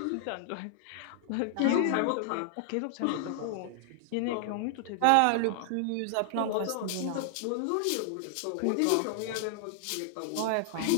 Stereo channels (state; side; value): different; both; correlation 0.00